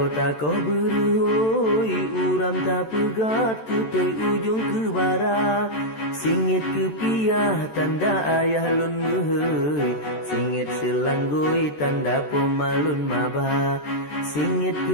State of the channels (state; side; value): late; right; 14 ms